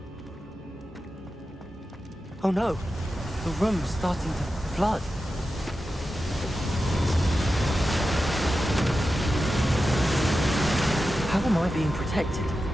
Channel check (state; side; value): normal; both; correlation 0.92